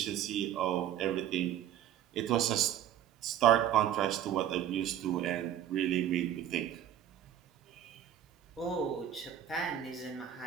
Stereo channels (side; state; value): left; quieter; 10.5 dB